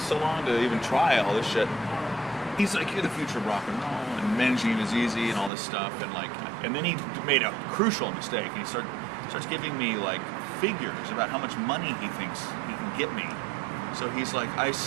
long to even try all this shit?" He's like, "You're the future of rock and roll, and managing is easy, and all this stuff." And then he made a crucial mistake. He starts giving me like figures about how much money he thinks he can get me. So he's like, "I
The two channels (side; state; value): left; drops out; at 5.5 s